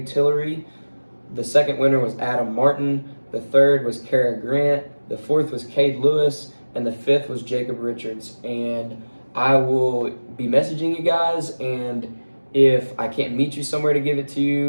Tillery. The second winner was Adam Martin. The third was Kara Grant. The fourth was Cade Lewis. And the fifth was Jacob Richards. And I will be messaging you guys, and if I can't meet you somewhere to give it to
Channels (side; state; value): both; inverted; correlation -1.00